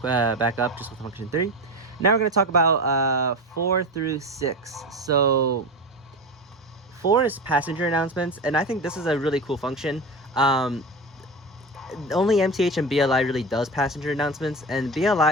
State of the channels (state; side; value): normal; both; correlation 0.24